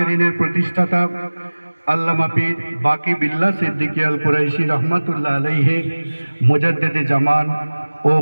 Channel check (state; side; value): inverted; both; correlation -1.00